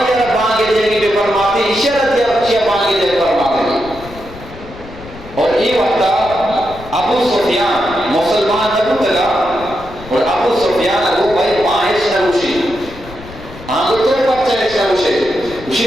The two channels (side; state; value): left; noise; rumble, 17 dB below the sound